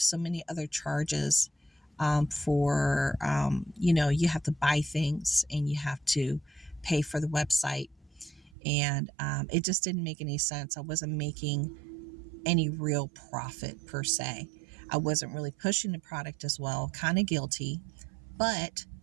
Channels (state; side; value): drops out; left; at 8.6 s